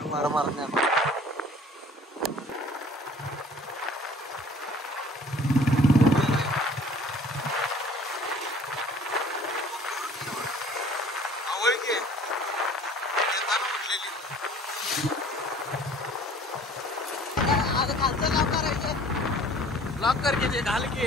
मार लॉक करके घाल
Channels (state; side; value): normal; both; correlation 0.51